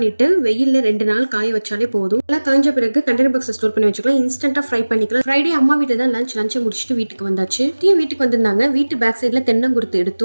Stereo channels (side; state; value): both; inverted; correlation -1.00